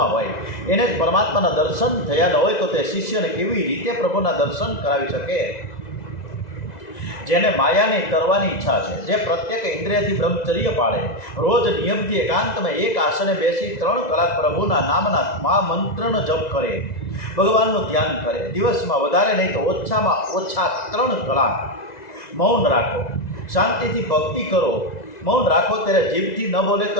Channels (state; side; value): late; right; 2.0 ms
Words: હોય, એને જ પરમાત્માના દર્શન થયા ન હોય તો તે શિષ્યને કેવી રીતે પ્રભુના દર્શન કરાવી શકે? જેને માયાની તરવાની ઈચ્છા છે, જે પ્રત્યેક ઇન્દ્રિયથી બ્રહ્મચર્ય પાળે, રોજ નિયમથી એકાંતમાં એક આસને બેસી 3 કલાક પ્રભુના નામના મહામંત્રનો જપ કરે, ભગવાનનું ધ્યાન કરે, દિવસમાં વધારે નહીં તો ઓછામાં ઓછા 3 કલાક મૌન રાખો, શાંતિથી ભક્તિ કરો. મૌન રાખો ત્યારે જીભથી ન બોલે